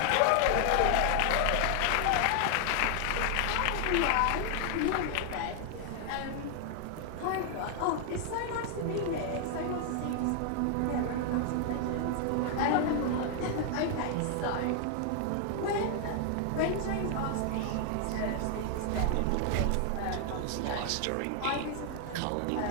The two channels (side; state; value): both; different; correlation 0.00